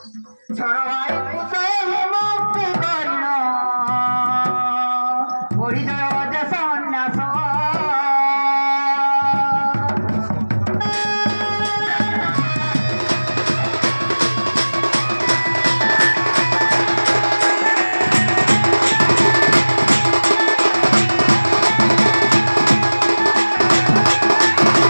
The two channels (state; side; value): inverted; both; correlation -1.00